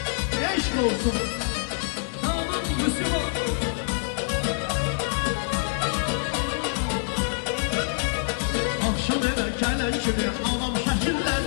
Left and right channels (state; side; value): silent; right; digital silence